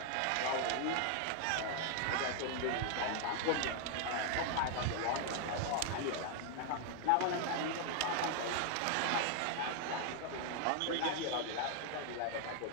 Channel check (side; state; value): both; different; correlation 0.00